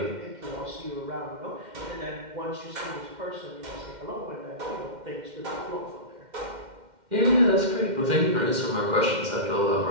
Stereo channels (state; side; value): late; left; 2.1 ms